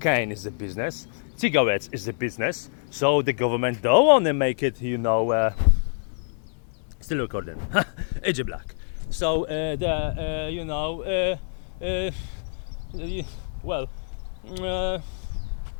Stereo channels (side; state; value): right; silent; digital silence